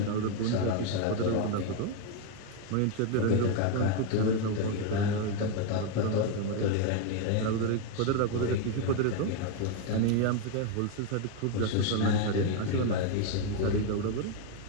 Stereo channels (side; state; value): both; different; correlation 0.01